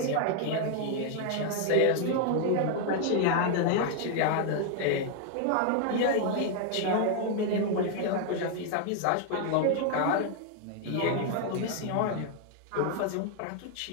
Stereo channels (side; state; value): both; different; correlation 0.00